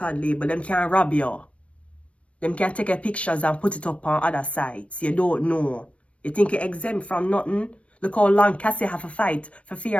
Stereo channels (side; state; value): right; late; 0.062 ms